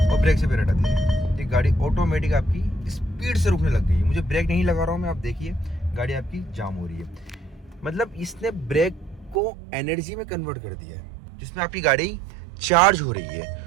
ब्रेक से पैर हटा दिया, ये गाड़ी ऑटोमेटिक आपकी स्पीड से रुकने लग गई है। मुझे ब्रेक नहीं लगा रहा हूँ मैं, आप देखिए गाड़ी आपकी जाम हो रही है। मतलब इसने ब्रेक को एनर्जी में कन्वर्ट कर दिया है जिसमें आपकी गाड़ी चार्ज हो रही है।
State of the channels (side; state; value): left; drops out; at 9.4 s